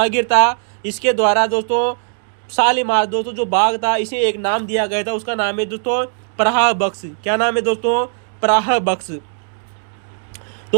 था, इसके द्वारा दोस्तों शालीमार दोस्तों जो बाग था इसे एक नाम दिया गया था, उसका नाम है दोस्तों प्रहा बख्श। क्या नाम है दोस्तों? प्रहा बख्श।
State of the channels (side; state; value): left; silent; digital silence